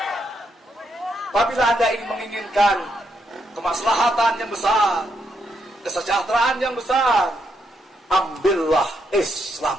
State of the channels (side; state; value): both; normal; correlation 0.79